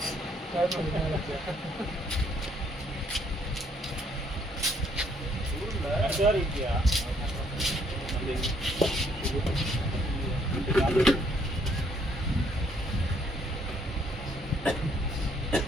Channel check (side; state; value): both; normal; correlation 0.67